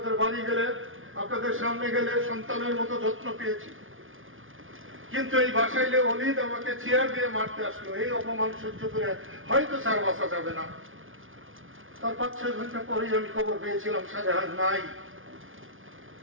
বাড়ি গেলে, আপনাদের সামনে গেলে সন্তানের মতো যত্ন পেয়েছি, কিন্তু এই বাসাইলে অলিদ আমাকে চেয়ার দিয়ে মারতে আসলো, এই অপমান সহ্য করে হয়তো স্যার বাঁচা যাবে না। তার 5-6 ঘন্টা পরেই আমি খবর পেয়েছিলাম শাহজাহান নাই।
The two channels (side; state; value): left; late; 0.58 ms